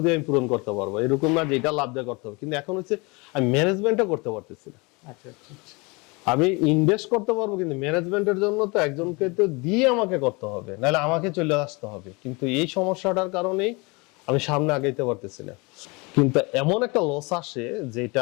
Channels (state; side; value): quieter; right; 27.4 dB